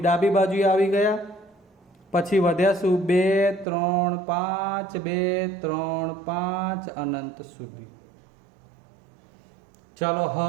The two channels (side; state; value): left; drops out; at 3.7 s